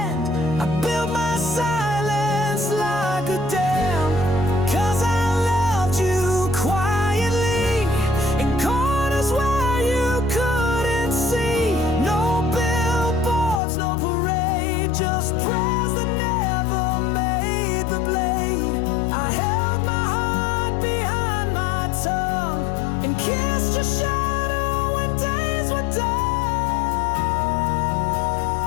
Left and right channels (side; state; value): right; drops out; at 13.6 s